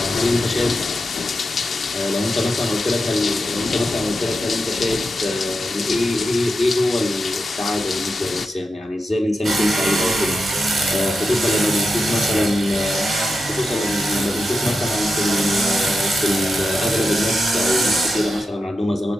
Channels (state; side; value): normal; both; correlation 0.89